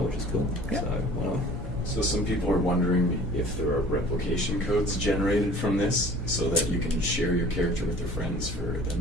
which is cool. Yeah. So why not? So some people are wondering if there are replication codes generated from this so that you can share your character with your friends for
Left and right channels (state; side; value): noise; left; hum, 16 dB below the sound